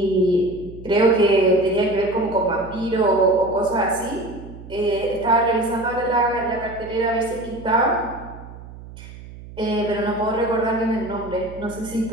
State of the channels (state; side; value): noise; right; hum, 16 dB below the sound